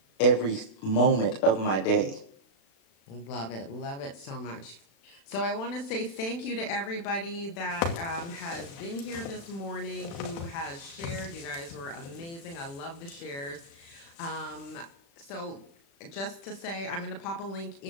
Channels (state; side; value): late; right; 36 ms